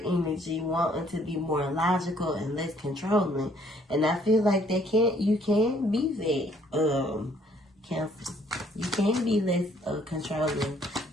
wanting to be more logical and less controlling. And I feel like you can be that, Cancer. You can be less controlling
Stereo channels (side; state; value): both; normal; correlation 0.63